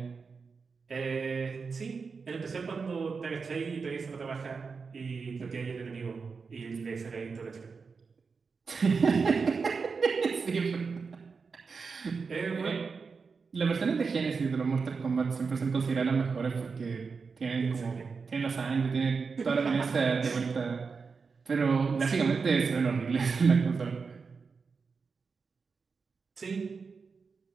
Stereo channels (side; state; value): left; quieter; 5.0 dB